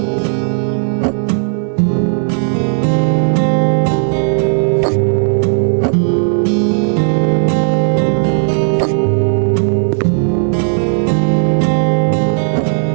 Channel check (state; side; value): silent; left; 71 dB below the other